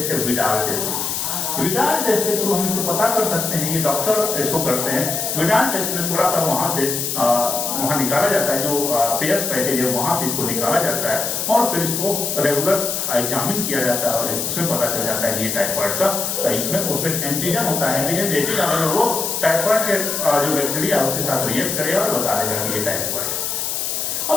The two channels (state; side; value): noise; left; hiss, 2 dB below the sound